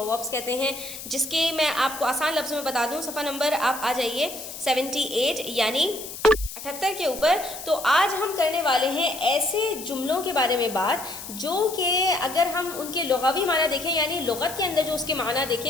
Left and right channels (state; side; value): noise; left; hiss, 11 dB below the sound